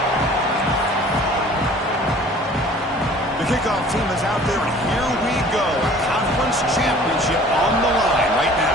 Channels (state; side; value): normal; both; correlation 0.49